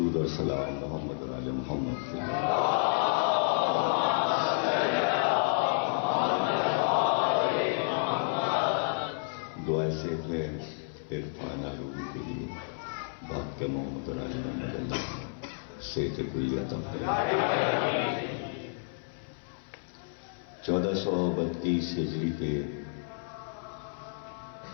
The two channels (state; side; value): silent; right; 57 dB below the other